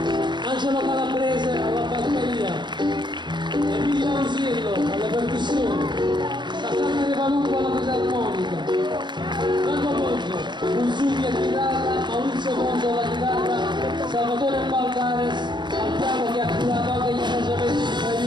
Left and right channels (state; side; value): late; left; 0.22 ms